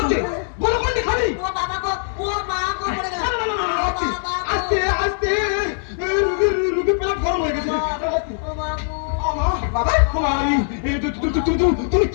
বলো কোনটি খালি ও বাবা গো ও মা গো পড়ে গেল না, না, না, না, না, আস্তে, ও বাবা গো। আস্তে আস্তে রুগী পেলা গরম হয়ে গেছে ও মা গো। বাবা তুমি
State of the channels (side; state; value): right; silent; 65 dB below the other